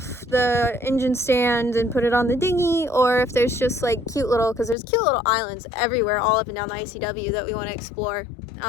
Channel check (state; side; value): drops out; right; at 4.8 s